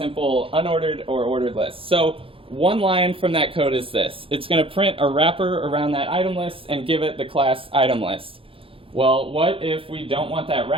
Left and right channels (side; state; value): left; late; 0.26 ms